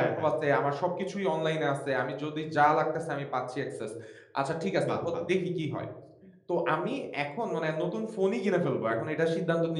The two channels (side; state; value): both; identical; correlation 1.00